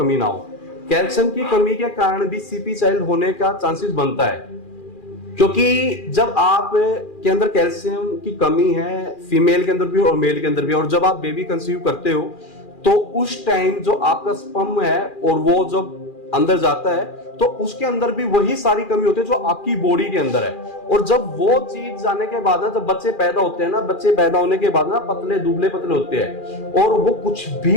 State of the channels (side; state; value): right; late; 2.4 ms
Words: ना हो। कैल्शियम की कमी के कारण भी सीपी चाइल्ड होने का चांसेस बनता है, क्योंकि जब आप के अंदर कैल्शियम की कमी है, फीमेल के अंदर भी और मेल के अंदर भी, और जब आप बेबी कंसीव करते हो तो उस टाइम जो आपका स्पर्म है और वो जब अंदर जाता है तो उसके अंदर भी वही सारी कमी होती है जो आपकी बॉडी के अंदर है। और जब वो चीज जाने के बाद ना, जब बच्चे पैदा होते हैं ना, बच्चे पैदा होने के बाद ना पतले दुबले पतले होते हैं, और वो कुछ